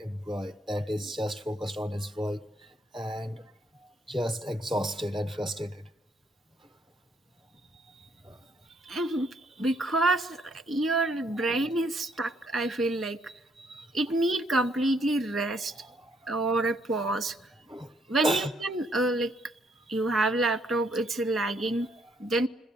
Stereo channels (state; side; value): normal; both; correlation 0.70